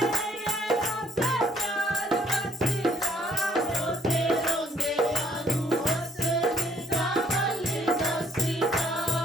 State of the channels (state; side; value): normal; both; correlation 0.67